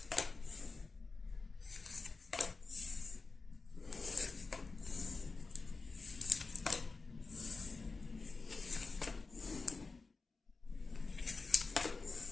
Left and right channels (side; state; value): right; quieter; 4.0 dB